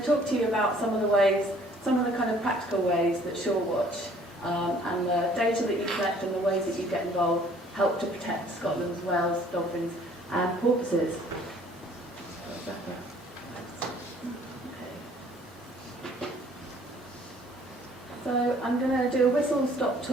talk to you about some of the kind of practical ways that SureWatch and the data that you collect and the ways that you get involved help to protect Scotland's whales, dolphins and porpoises. So I'm going to do a whistle-stop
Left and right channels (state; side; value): normal; both; correlation 0.57